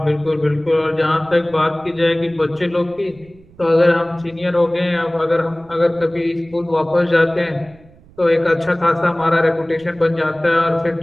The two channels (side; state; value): right; noise; rumble, 26 dB below the sound